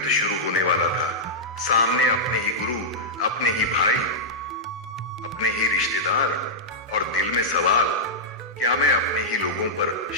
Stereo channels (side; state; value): both; normal; correlation -0.09